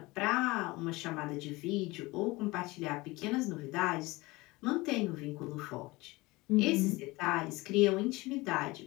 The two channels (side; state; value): right; quieter; 21.9 dB